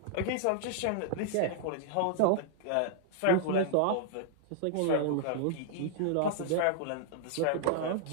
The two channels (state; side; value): different; both; correlation -0.01